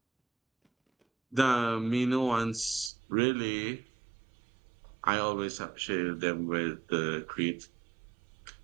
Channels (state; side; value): drops out; left; at 2.9 s